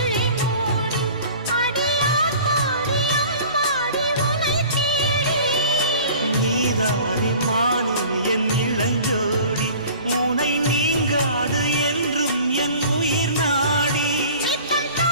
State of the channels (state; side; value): inverted; both; correlation -0.44